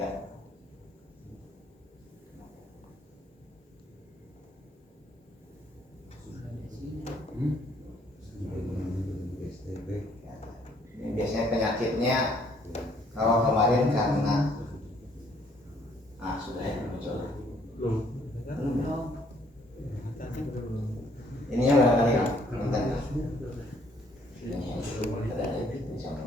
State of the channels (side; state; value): both; normal; correlation 0.64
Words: Ini biasanya penyakitnya kalau kemarin karena sudah ya muncul. Ininya berapa kali kan? Bentar. Ini ada di sana.